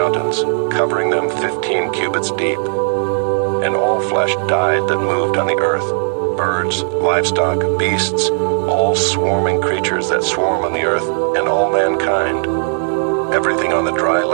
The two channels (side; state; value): left; silent; digital silence